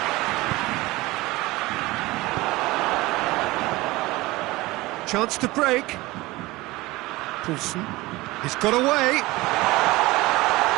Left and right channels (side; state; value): left; quieter; 20.2 dB